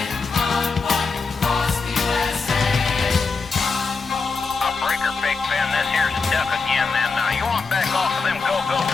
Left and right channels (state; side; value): quieter; right; 4.5 dB